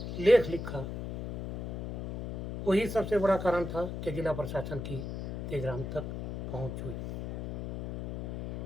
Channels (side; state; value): left; noise; hum, 6 dB below the sound